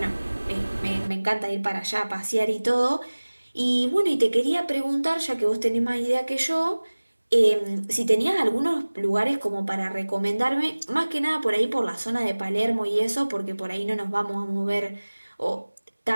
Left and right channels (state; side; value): inverted; both; correlation -1.00